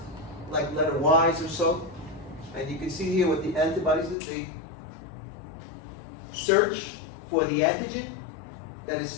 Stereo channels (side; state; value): right; drops out; at 4.2 s